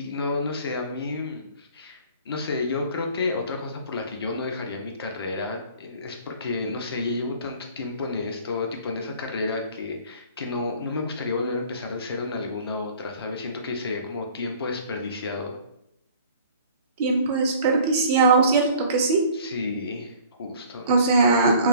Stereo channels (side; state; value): both; inverted; correlation -0.51